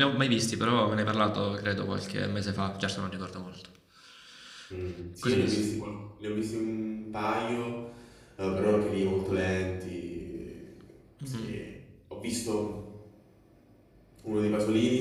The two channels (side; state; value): both; identical; correlation 1.00